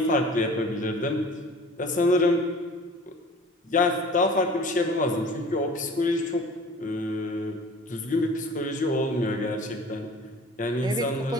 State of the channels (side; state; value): both; normal; correlation 0.44